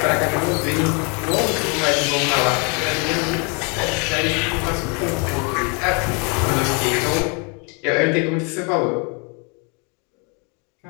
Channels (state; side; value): quieter; right; 33.8 dB